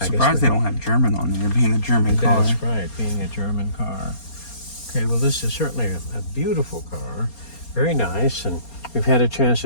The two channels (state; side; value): late; right; 4.3 ms